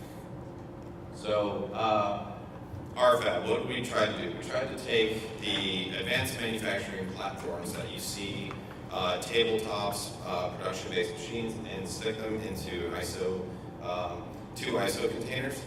RFAB, what did we try to do? We tried to take the advanced manufacturing platforms that you see, tabletops, production-based machines, and stick them into two ISO containers,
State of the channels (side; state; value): both; identical; correlation 1.00